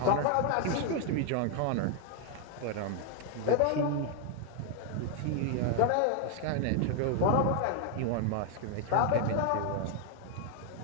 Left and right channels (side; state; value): both; different; correlation 0.00